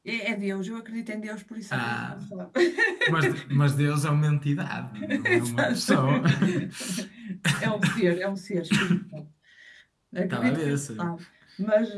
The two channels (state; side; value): identical; both; correlation 1.00